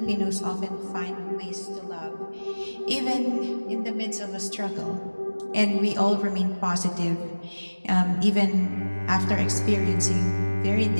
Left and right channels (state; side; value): inverted; both; correlation -1.00